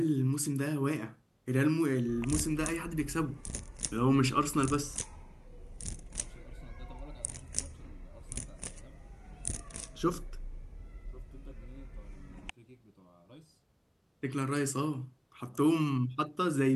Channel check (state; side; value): identical; both; correlation 1.00